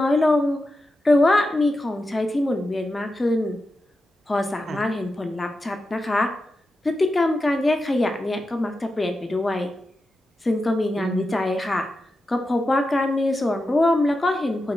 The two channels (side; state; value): both; normal; correlation 0.90